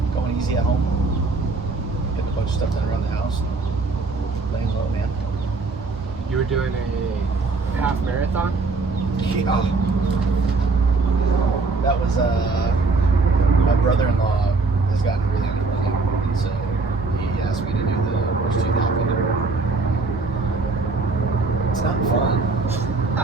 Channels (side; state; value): left; quieter; 3.9 dB